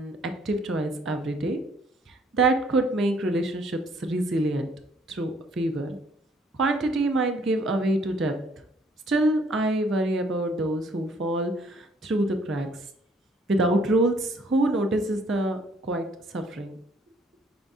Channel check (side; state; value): both; normal; correlation 0.62